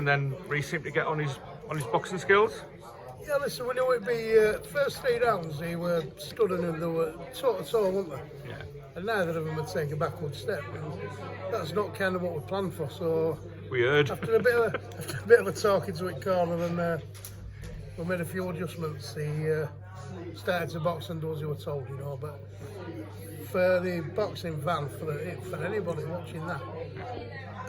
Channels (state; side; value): identical; both; correlation 1.00